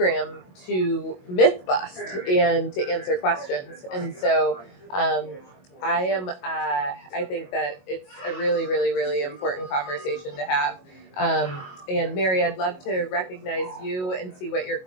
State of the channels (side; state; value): right; late; 22 ms